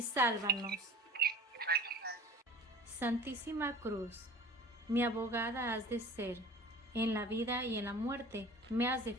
sálvanos. Santísima Cruz, mi abogada has de ser, en la vida y en la muerte me has de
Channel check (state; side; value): normal; both; correlation 0.42